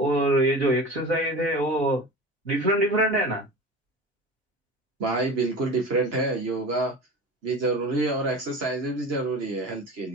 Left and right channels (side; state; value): both; normal; correlation 0.33